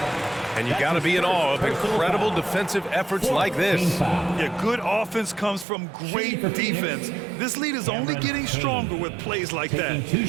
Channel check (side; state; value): left; drops out; at 5.7 s